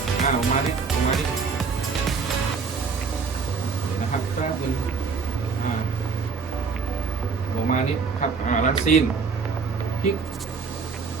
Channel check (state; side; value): quieter; left; 5.1 dB